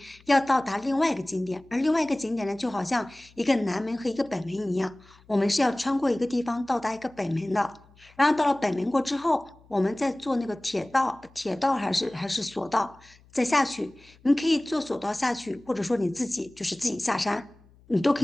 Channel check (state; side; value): noise; left; hum, 28 dB below the sound